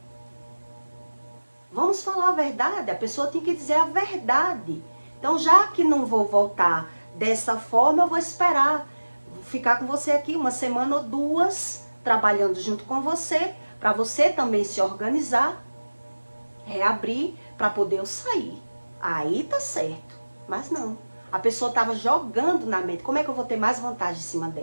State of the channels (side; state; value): both; inverted; correlation -1.00